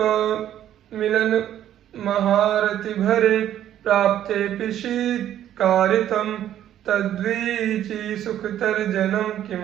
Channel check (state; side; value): quieter; left; 11.4 dB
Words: प्राप्तेऽपि शीत्कारितं तद्वीची सुखतर्जनं